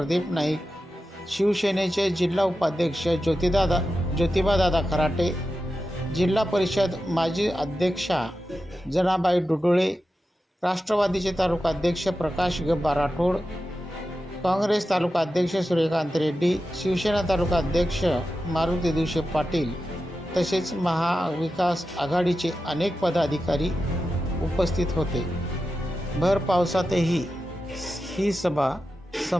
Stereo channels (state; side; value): normal; both; correlation 0.91